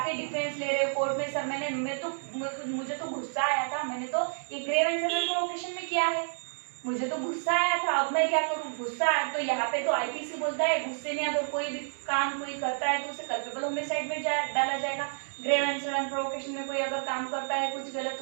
डिफेंस ले रहे हो कोर्ट में, सर मुझे तो गुस्सा आया था, मैंने तो ये ग्रेव एंड सडन प्रोवोकेशन में किया है। मुझे तो गुस्सा आया था, अब मैं क्या करूँ, गुस्सा आया तो यहाँ पे तो आईपीसी बोलता है गुस्से में अगर कोई भी काम कोई करता है तो उसे कल्पेबल होमिसाइड में डाला जाएगा। ग्रेव एंड सडन प्रोवोकेशन में कोई अगर काम करता है कुछ गलत,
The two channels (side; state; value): left; silent; 56 dB below the other